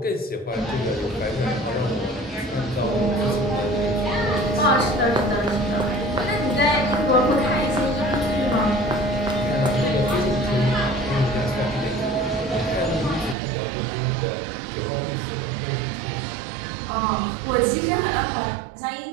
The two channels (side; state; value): left; drops out; at 13.4 s